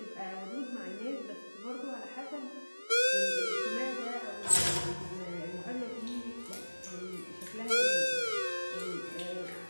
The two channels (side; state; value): both; inverted; correlation -1.00